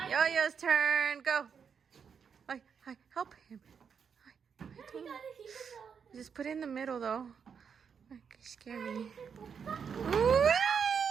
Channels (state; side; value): quieter; left; 6.7 dB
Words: Yo-Yo's turn. Go. Hi, help him. Just put it in the middle, though. You scare me.